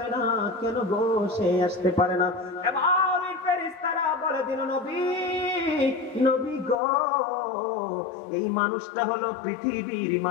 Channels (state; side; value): drops out; right; at 6.8 s